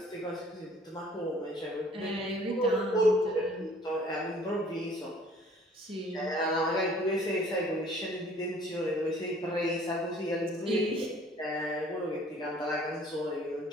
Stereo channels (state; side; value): normal; both; correlation 0.55